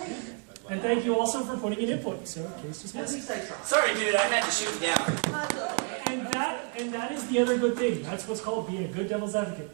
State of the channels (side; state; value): left; quieter; 37.6 dB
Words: And thank you also for putting in input. So, case At dismissed. least I tried. Sorry, dude, I had to shoot you down. And that is the other good thing. That's what's called being a good devil's